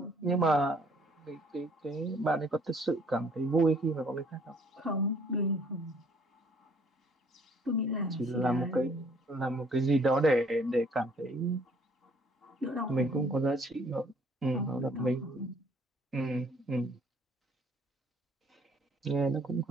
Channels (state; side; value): normal; both; correlation 0.61